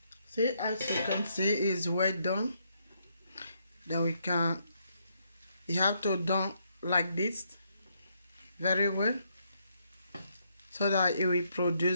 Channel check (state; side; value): inverted; both; correlation -0.75